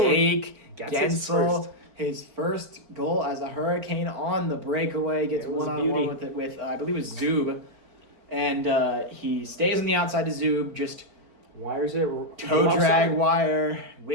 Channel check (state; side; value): late; left; 4.4 ms